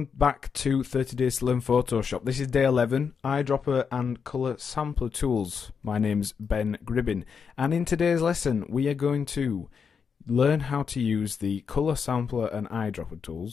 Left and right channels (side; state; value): right; quieter; 6.3 dB